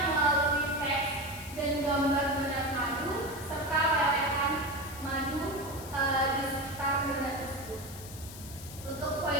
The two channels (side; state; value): left; noise; hiss, 14 dB below the sound